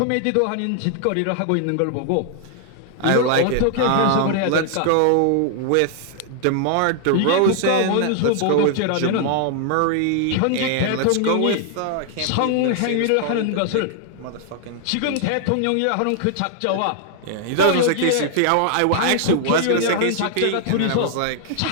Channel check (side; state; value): both; different; correlation 0.00